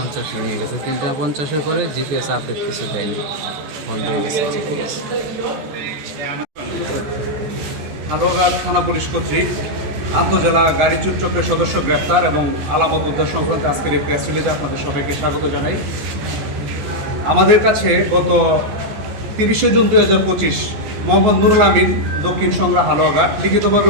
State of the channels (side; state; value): left; late; 14 ms